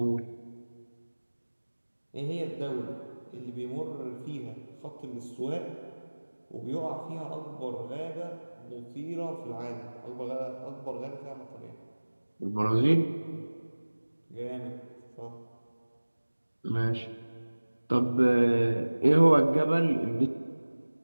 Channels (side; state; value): both; inverted; correlation -1.00